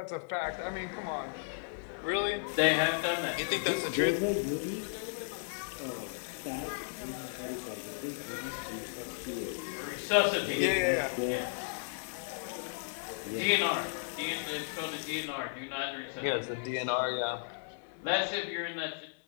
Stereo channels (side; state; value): right; silent; 55 dB below the other